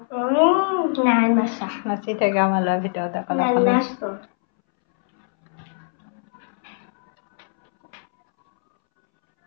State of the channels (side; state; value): right; silent; 64 dB below the other